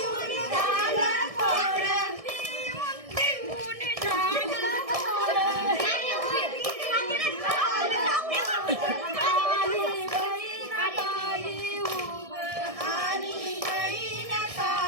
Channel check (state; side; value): late; left; 1.6 ms